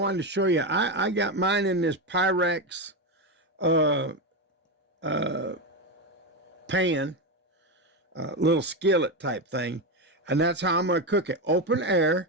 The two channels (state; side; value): normal; both; correlation 0.13